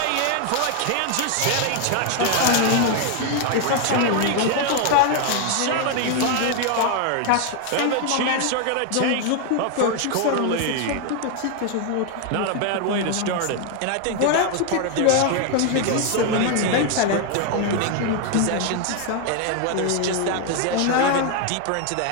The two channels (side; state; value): both; different; correlation 0.01